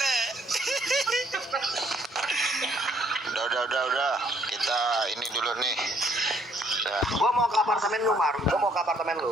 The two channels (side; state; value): both; normal; correlation 0.65